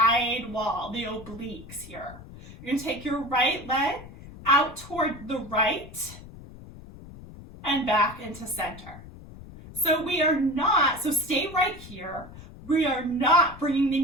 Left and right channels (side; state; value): left; noise; rumble, 16 dB below the sound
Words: wall, the obliques here. You're going to take your right leg out toward the right and back into center. So stay right here. We are not bringing the